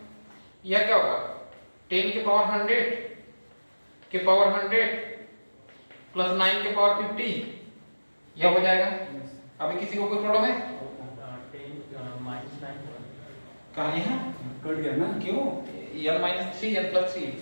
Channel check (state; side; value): inverted; both; correlation -1.00